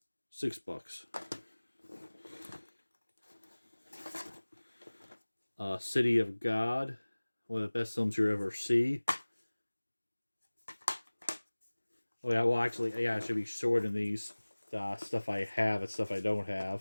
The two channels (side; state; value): both; inverted; correlation -1.00